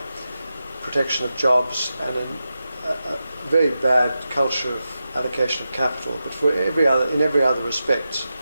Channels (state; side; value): inverted; both; correlation -0.90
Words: protection of jobs and a very bad culture of allocation of capital. But in every other respect,